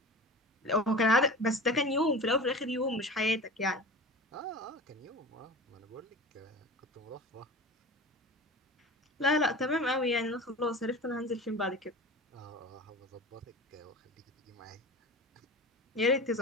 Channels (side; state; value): both; normal; correlation 0.34